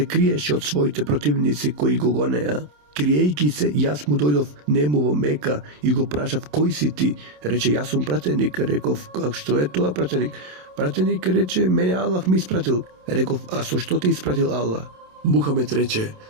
криеше од своите противници кои го гонеа. Криејќи се, јас му дојдов нему во Мека и го прашав: кој си ти? Рече: јас сум пратеник. Реков: как што е тоа пратеник? Пратеник рече: мене Аллах ми испратил. Реков: а со што те испратил Аллах? Мухамед рече:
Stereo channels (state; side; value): late; left; 27 ms